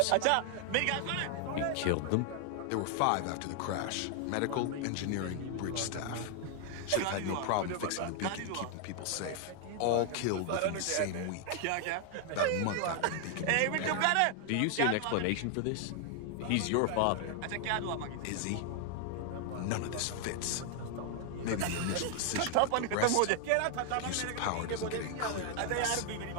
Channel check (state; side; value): different; both; correlation 0.00